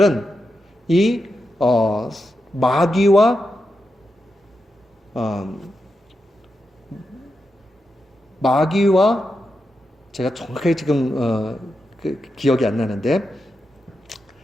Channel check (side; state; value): both; normal; correlation 0.87